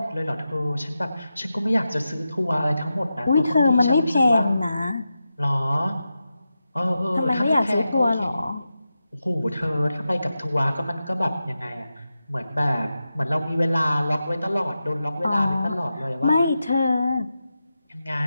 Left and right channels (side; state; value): both; inverted; correlation -0.91